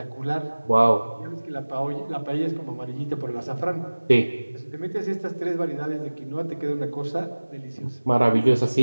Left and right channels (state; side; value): inverted; both; correlation -1.00